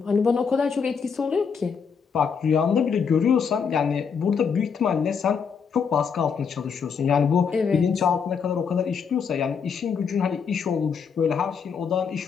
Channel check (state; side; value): quieter; right; 6.3 dB